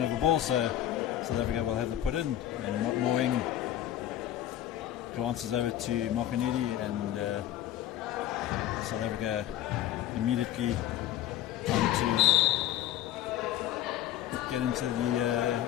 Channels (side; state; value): right; quieter; 12.5 dB